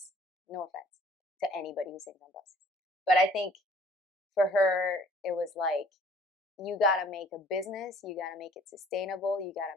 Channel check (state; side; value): normal; both; correlation 0.55